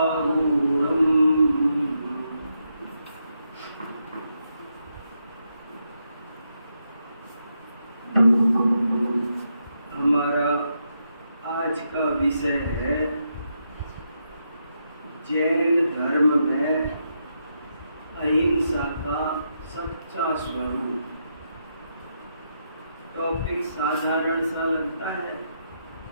हमारा आज का विषय है जैन धर्म में अहिंसा का सच्चा स्वरूप। टॉपिक साधारण सा लगता है,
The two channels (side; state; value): both; inverted; correlation -0.81